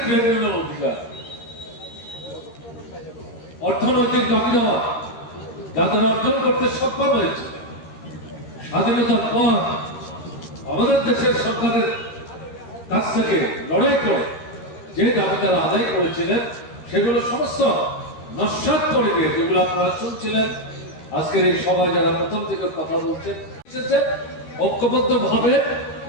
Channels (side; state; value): right; late; 13 ms